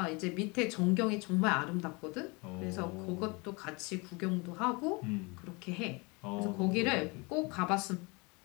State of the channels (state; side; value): quieter; right; 28.2 dB